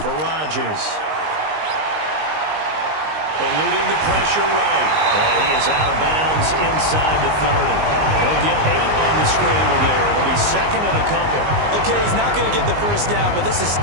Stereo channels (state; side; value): late; left; 19 ms